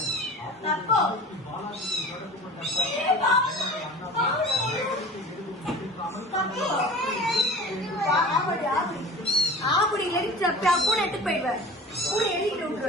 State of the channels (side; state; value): both; normal; correlation 0.39